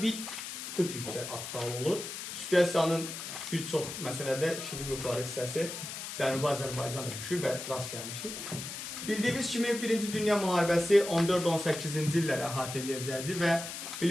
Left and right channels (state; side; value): noise; left; hiss, 7 dB below the sound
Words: bir tık yüksək aktual olur. Situasiyanın bir çox məsələdə ikinci qrupları hissəsi Cənubi Azərbaycanda düşür və rast gəlmişik. Bildiyimiz kimi 1-ci Dünya Müharibəsi 14-18-ci illəri əhatə edəcəkdir və